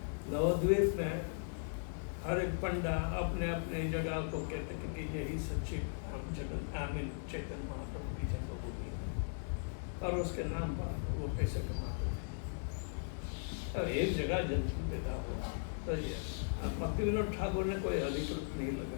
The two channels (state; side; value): silent; right; digital silence